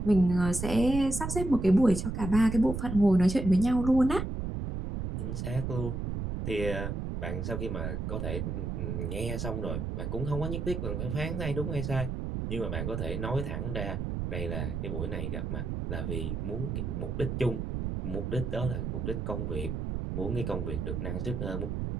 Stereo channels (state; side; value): noise; right; rumble, 3 dB below the sound